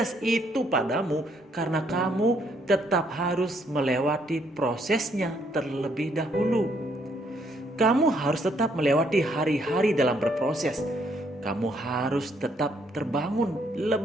itu padamu, karena kamu tetap harus melewati prosesnya terlebih dahulu. Kamu harus tetap melewati hari-hari dalam berproses. Kamu harus tetap terbangun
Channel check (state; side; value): normal; both; correlation 0.70